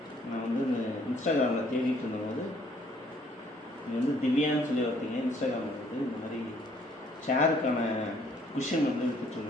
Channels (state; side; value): normal; both; correlation 0.63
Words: நான் வந்து இன்ஸ்டாகிராமில் தேடிட்டு இருந்தபோது இது வந்து திவ்யான்னு சொல்லி ஒருத்தீங்க இன்ஸ்டாகிராமில் வந்து இந்த மாதிரி சேருக்கான குஷன் வந்து